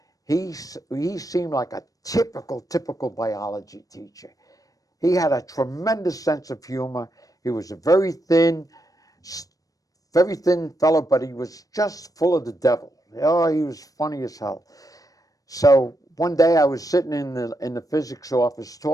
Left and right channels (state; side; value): late; right; 0.17 ms